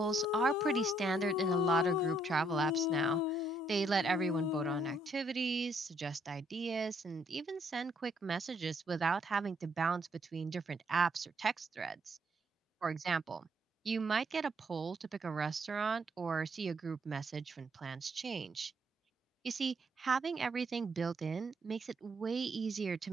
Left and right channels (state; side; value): normal; both; correlation 0.71